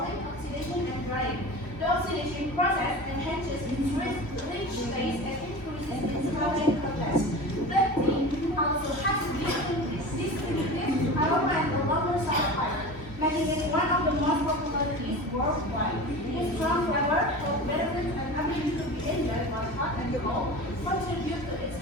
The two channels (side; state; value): right; late; 3.1 ms